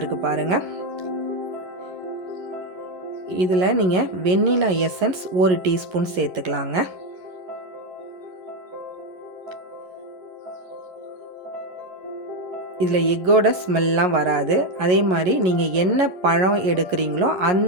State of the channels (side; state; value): left; late; 11 ms